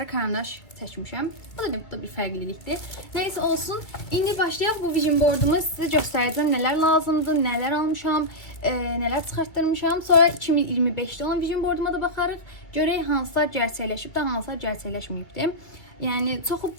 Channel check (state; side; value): late; right; 2.3 ms